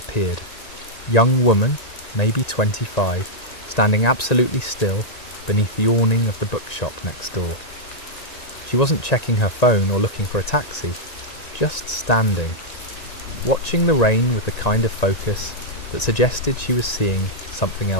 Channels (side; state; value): right; late; 1.9 ms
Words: Young woman, maybe 25, standing absolutely still beneath the awning of the bookshop next door. She wasn't checking her phone or looking for a taxi, just standing, watching the rain with the kind of focus that suggested she was seeing something